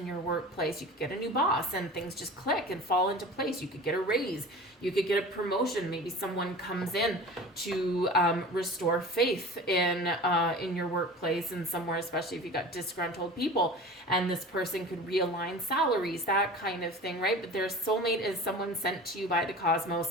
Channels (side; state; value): both; normal; correlation 0.37